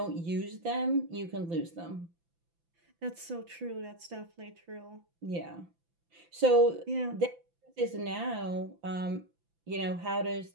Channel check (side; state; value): left; late; 5.9 ms